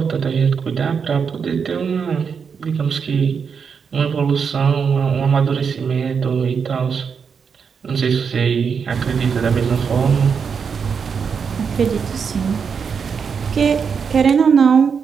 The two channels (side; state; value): left; quieter; 6.3 dB